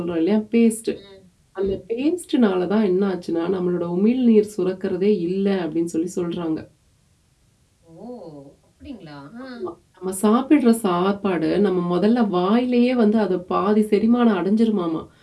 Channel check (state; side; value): identical; both; correlation 1.00